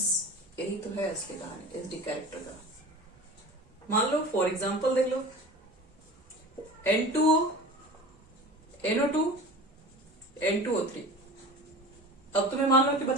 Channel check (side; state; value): both; normal; correlation 0.36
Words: यही तो है इसकी कहानी एसिडिक कैरेक्टर का। मान लो फॉर एग्जांपल देख लो, N2O, NO2, N2O3। अब तुम्हें मान लो कि